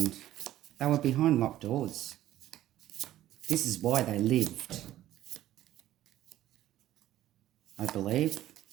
they were behind locked doors. This is why they lived, I believe,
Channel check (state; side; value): quieter; left; 13.6 dB